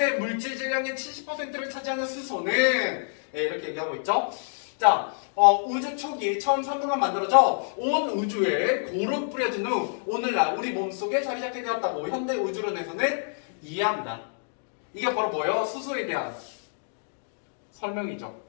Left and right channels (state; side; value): silent; right; digital silence